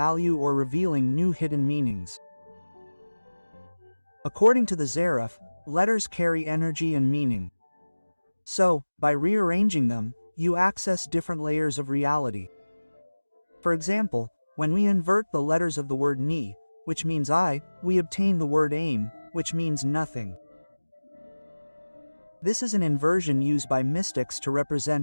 or revealing new hidden meanings. According to the Zarif, letters carry energy and meaning. So, by rearranging them, you access different layers of reality. For example, when we invert the letters of the word ni, which means I, we obtain the word aim, which means nothing. This is an inversion used by mystics to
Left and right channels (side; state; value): both; inverted; correlation -1.00